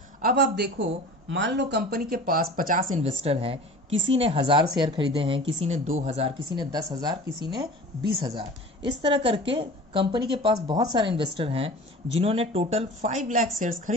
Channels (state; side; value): normal; both; correlation 0.39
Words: अब आप देखो, मान लो कंपनी के पास 50 इन्वेस्टर हैं, किसी ने 1000 शेयर खरीदे हैं, किसी ने 2000, किसी ने 10,000, किसी ने 20,000, इस तरह करके कंपनी के पास बहुत सारे इन्वेस्टर हैं जिन्होंने टोटल 5 लाख शेयर्स